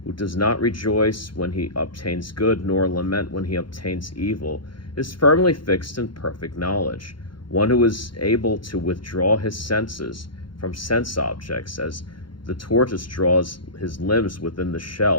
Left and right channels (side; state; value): right; late; 0.73 ms